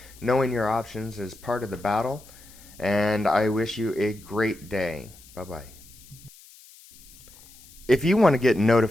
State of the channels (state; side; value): noise; left; hiss, 23 dB below the sound